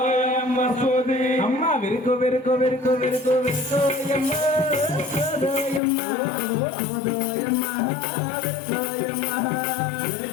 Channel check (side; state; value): right; drops out; at 5.8 s